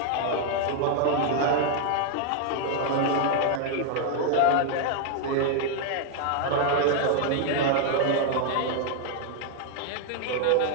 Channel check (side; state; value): both; different; correlation 0.00